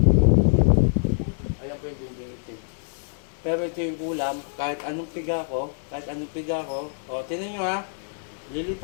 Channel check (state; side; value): silent; right; digital silence